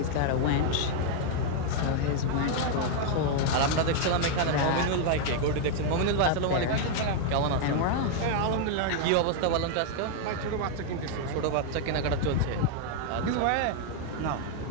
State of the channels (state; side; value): different; both; correlation 0.00